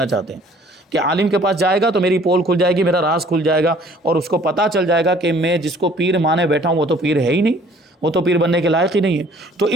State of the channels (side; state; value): both; normal; correlation 0.55